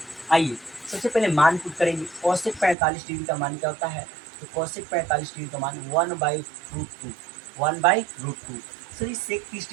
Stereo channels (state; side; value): drops out; left; at 2.8 s